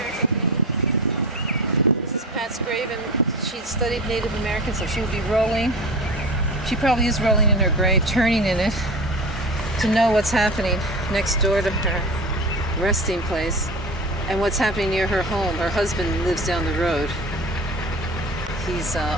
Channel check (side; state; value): both; normal; correlation 0.32